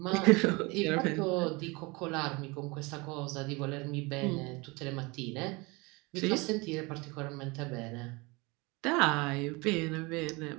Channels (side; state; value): left; quieter; 25.8 dB